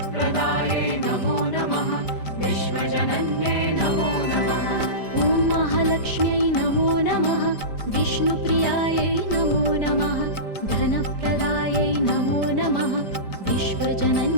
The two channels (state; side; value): late; right; 5.0 ms